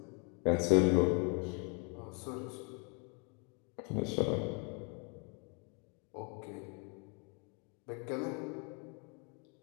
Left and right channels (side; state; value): right; quieter; 35.6 dB